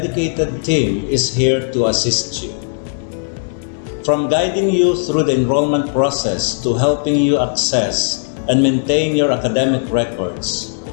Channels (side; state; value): right; silent; digital silence